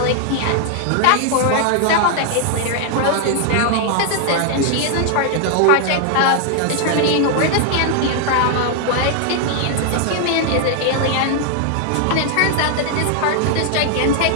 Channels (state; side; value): different; both; correlation 0.00